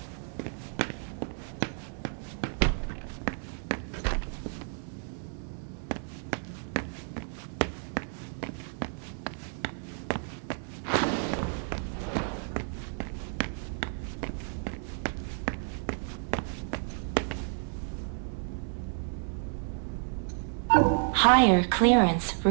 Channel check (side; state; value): left; silent; 57 dB below the other